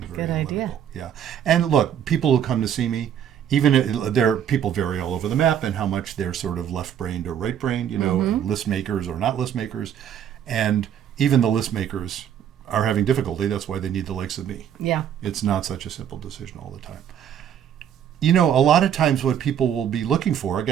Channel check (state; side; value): quieter; left; 9.4 dB